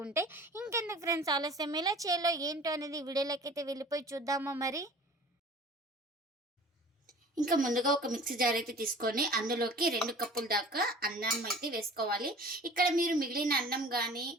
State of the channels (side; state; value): both; normal; correlation 0.44